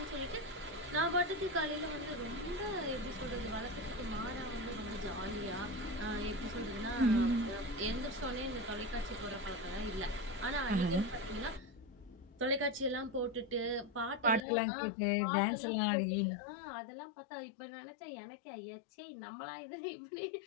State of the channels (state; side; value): drops out; right; at 14.5 s